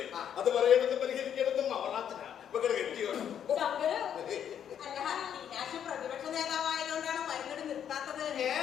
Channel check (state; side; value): quieter; right; 9.1 dB